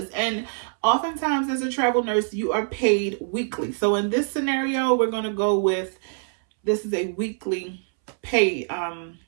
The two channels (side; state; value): left; silent; 62 dB below the other